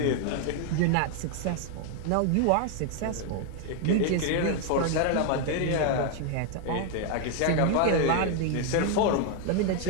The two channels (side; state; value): both; different; correlation 0.00